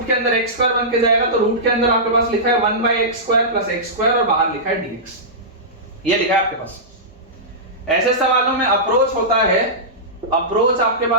के अंदर x स्क्वायर बन के जाएगा तो रूट के अंदर आपके पास लिखा है 1 by x square plus x square, और बाहर लिखा है dx, ये लिखा है आपके पास। ऐसे सवालों में अप्रोच होता है, अप्रोच आपके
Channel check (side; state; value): both; normal; correlation -0.16